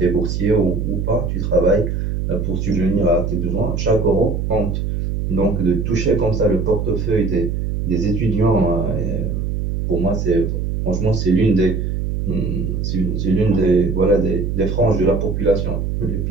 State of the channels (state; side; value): noise; right; hum, 1 dB below the sound